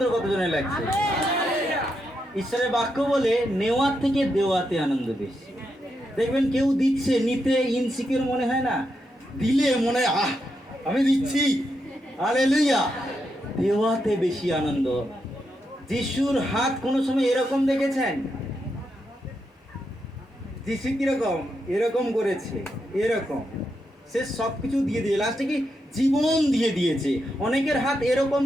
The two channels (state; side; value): normal; both; correlation 0.83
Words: কতজনে লাগছে। ঈশ্বরের বাক্য বলে নেওয়ার থেকে দেওয়াতে আনন্দ বেশি। দেখবেন কেউ দিচ্ছে, নিতে ইনসিকিউর মনে হয় না, দিলে মনে হয় আহ আমি দিচ্ছি, হালেলুয়া। দেওয়াতে বেশি আনন্দ। যিশুর হাত কোনো সময় এরকম দেখেছেন? যিশু কিরকম? এরকম করেছে, এরকম। সে সব কিছু দিয়ে দিয়ে লাস্টে কি জীবন দিয়ে দিয়েছে। অনেকের হাত